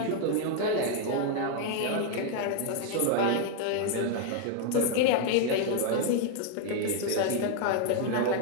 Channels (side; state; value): both; different; correlation 0.00